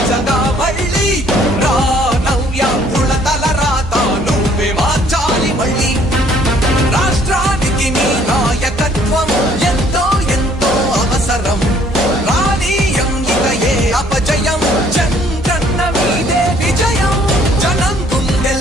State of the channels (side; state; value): both; normal; correlation 0.61